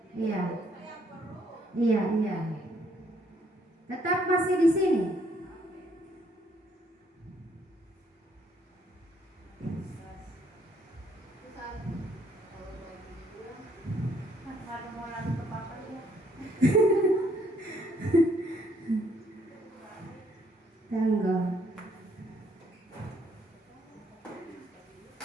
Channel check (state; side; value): normal; both; correlation 0.67